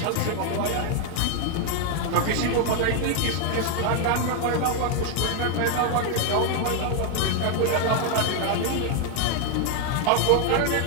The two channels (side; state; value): both; different; correlation 0.00